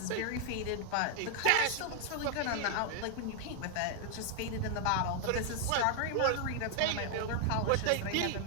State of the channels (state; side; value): different; both; correlation 0.00